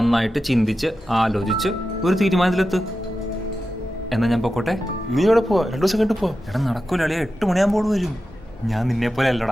ചിന്തിച്ച് ആലോചിച്ച് ഒരു തീരുമാനത്തിലെത്ത്. എന്നാ ഞാൻ പൊക്കോട്ടെ? നീ എവിടെ പോവാ? 2 ദിവസം കണ്ടു പോവാ? എടാ, നടക്കൂല അളിയ. 8 മണിയാകുമ്പോൾ വരും. ഞാൻ നിന്നെ പോലെ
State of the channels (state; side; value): normal; both; correlation 0.91